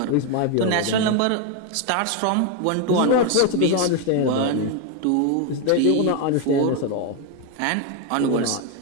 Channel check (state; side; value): different; both; correlation 0.01